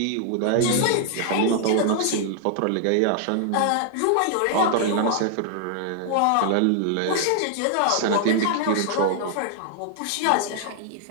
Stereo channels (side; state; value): both; different; correlation -0.01